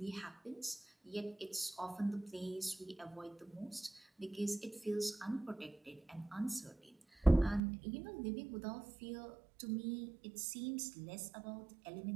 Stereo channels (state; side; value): drops out; left; at 7.6 s